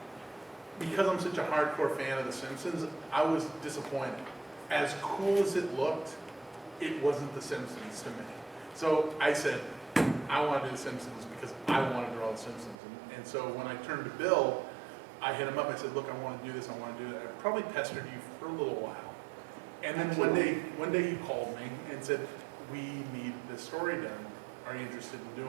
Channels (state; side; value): drops out; left; at 12.8 s